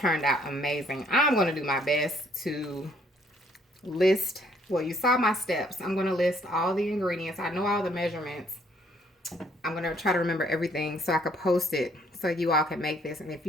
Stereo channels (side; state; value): both; normal; correlation 0.65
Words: out amazing. I'm going to do my best to list, well, you saw my steps. I'm going to list all the ingredients. I know all the measurements. I'm going to try to remember everything so I could post it so you all can make this. And if